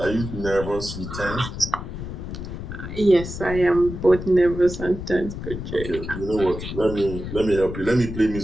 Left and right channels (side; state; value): left; noise; rumble, 8 dB below the sound